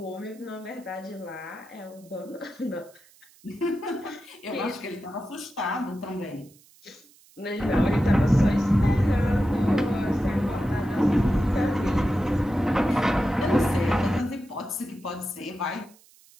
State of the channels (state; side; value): noise; right; hiss, 28 dB below the sound